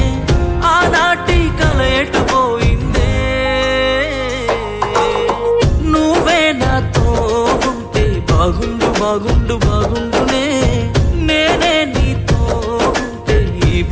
ఆనాటి కల ఎటుపోయిందే. నువ్వే నాతో ఉంటే బాగుండు బాగుండు బాగుండునే. నేనే నీతో ఉంటే ఈ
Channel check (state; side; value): identical; both; correlation 1.00